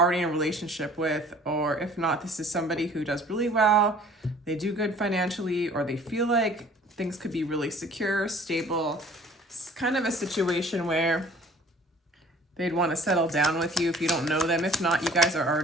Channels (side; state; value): both; normal; correlation 0.51